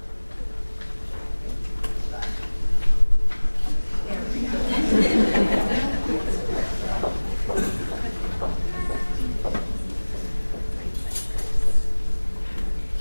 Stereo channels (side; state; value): both; inverted; correlation -1.00